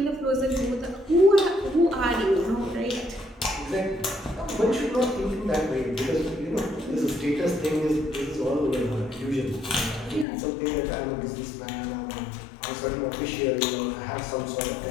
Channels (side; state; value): right; drops out; at 10.2 s